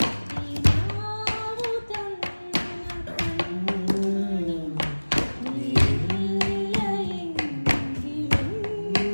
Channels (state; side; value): inverted; both; correlation -1.00